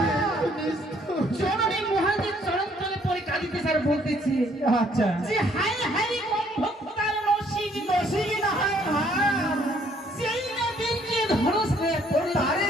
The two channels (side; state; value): both; normal; correlation 0.64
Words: জননী মহাদেব চরণতলে পড়ে কাঁদিতেছে আর বলতেছে, আচ্ছা যে হাই হাই ভক্তার নসিব নসিব না হয় সেই না বেঁচে ধরস হয়ে পড়ে তারে